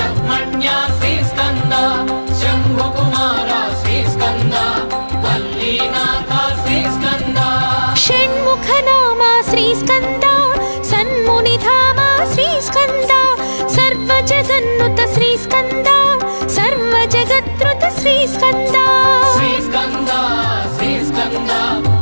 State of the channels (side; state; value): both; inverted; correlation -1.00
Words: శ్రీస్కంద శంభుకుమార శ్రీస్కంద వల్లీనాథ శ్రీస్కంద షణ్ముఖ నామ శ్రీస్కంద సన్మునిధామ శ్రీస్కంద సర్వ జగన్నుత శ్రీస్కంద సర్వ జగత్రుత శ్రీస్కంద శ్రీస్కంద శ్రీస్కంద